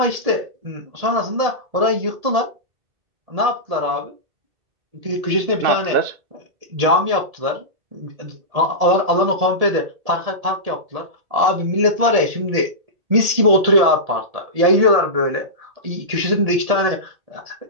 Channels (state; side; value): late; left; 1.8 ms